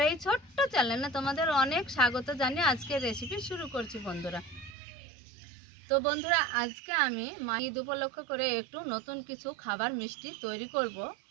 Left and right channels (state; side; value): drops out; left; at 4.8 s